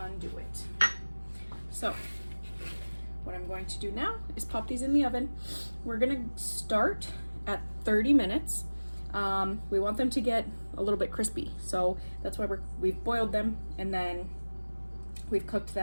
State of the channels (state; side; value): inverted; both; correlation -1.00